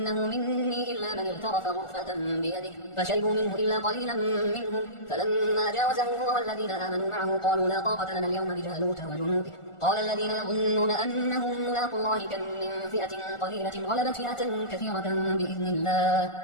مني إلا من اغترف غرفة بيده، فشربوا منه إلا قليلا منهم. فلما جاوزه هو والذين آمنوا معه قالوا لا طاقة لنا اليوم بجالوت وجنوده، قال الذين يظنون أنهم ملاقوا الله كم من فئة قليلة غلبت فئة كثيرة بإذن الله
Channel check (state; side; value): late; right; 1.4 ms